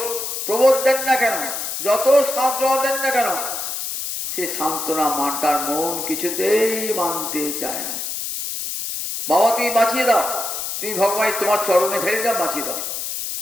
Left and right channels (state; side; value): noise; left; hiss, 4 dB below the sound